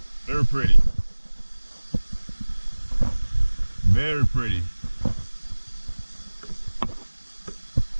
Very pretty. Very pretty.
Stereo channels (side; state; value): both; inverted; correlation -1.00